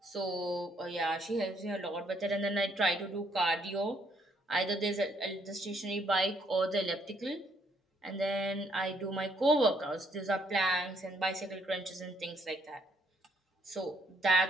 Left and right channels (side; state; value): both; normal; correlation 0.69